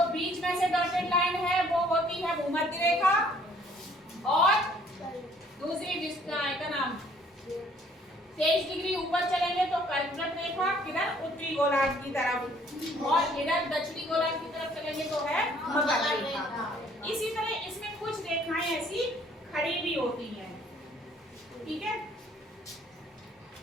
बीच में से डॉटेड लाइन है वो होती है भूमध्य रेखा, और दूसरी का नाम 23 डिग्री ऊपर चलेंगे तो कर्कवृत्त रेखा, किधर उत्तरी गोलार्ध की तरफ, और इधर दक्षिणी गोलार्ध की तरफ चलेंगे तो है मकर रेखा। इसी तरह इसमें कुछ रेखाएं ऐसी खड़ी भी होती हैं, ठीक है।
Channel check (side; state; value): both; normal; correlation 0.60